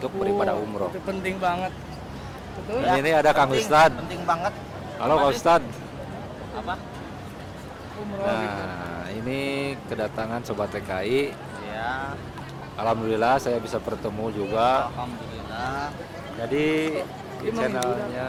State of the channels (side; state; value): both; identical; correlation 1.00